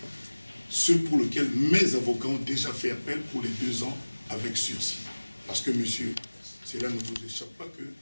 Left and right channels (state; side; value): inverted; both; correlation -1.00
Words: Ceux pour lesquels mes avocats ont déjà fait appel pour les 2 ans avec sursis. Parce que, monsieur, cela ne vous échappe pas que